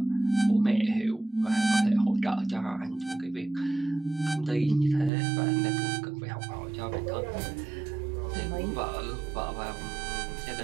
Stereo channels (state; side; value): drops out; left; at 5.1 s